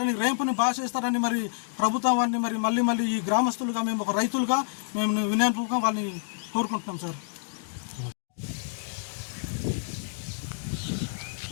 రేంపుని బాగా చేస్తారని మరి ప్రభుత్వాన్ని మరి మళ్ళీ ఈ గ్రామస్తులుగా మేము ఒక రైతులుగా మేము వినయంగా వాళ్ళని కోరుకుంటున్నాం సార్.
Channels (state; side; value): silent; right; digital silence